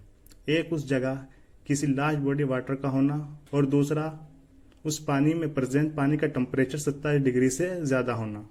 एक, उस जगह किसी लार्ज बॉडी वाटर का होना, और दूसरा, उस पानी में प्रेजेंट पानी का टेम्परेचर 27 डिग्री से ज़्यादा होना।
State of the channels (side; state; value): both; identical; correlation 1.00